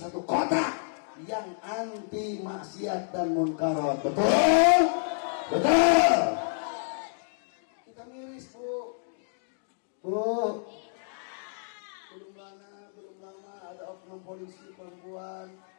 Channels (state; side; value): silent; right; digital silence